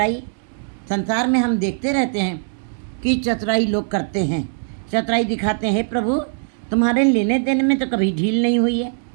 संसार में हम देखते रहते हैं कि चतुराई लोग करते हैं, चतुराई दिखाते हैं। हे प्रभु, तुम्हारे लेने देने में तो कभी ढील नहीं हुई है।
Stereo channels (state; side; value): silent; left; 65 dB below the other